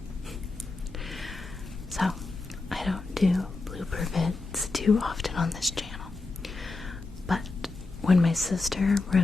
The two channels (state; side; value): quieter; right; 3.5 dB